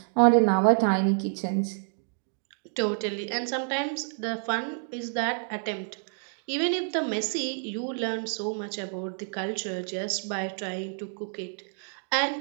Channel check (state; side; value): silent; left; 58 dB below the other